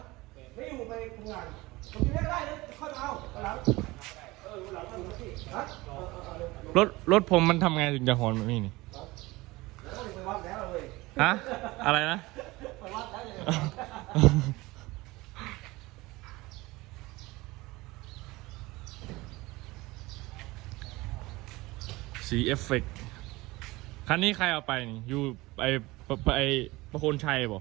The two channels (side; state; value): left; quieter; 20.9 dB